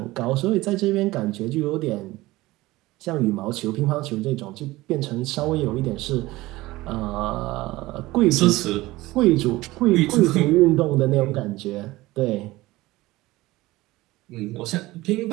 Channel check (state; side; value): quieter; left; 19.0 dB